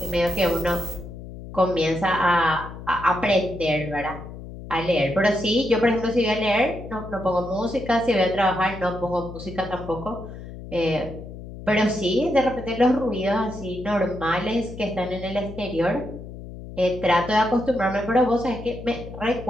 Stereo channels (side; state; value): left; noise; hum, 12 dB below the sound